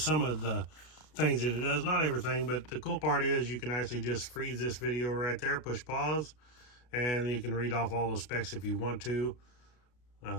of the things that it does, not everything, but the cool part is you can actually just freeze this video right there, push pause, and you can read off all the specs if you want to.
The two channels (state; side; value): late; right; 33 ms